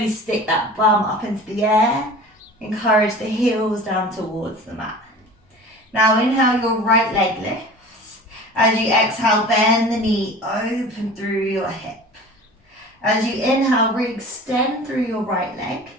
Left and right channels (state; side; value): normal; both; correlation 0.40